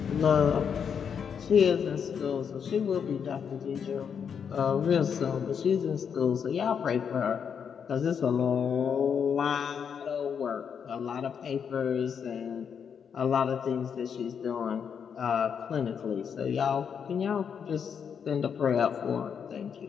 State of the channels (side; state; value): right; quieter; 7.2 dB